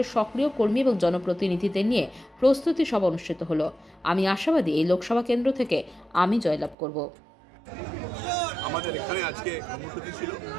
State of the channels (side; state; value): left; drops out; at 6.8 s